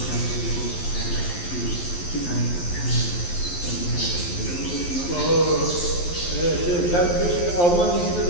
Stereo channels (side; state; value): right; late; 11 ms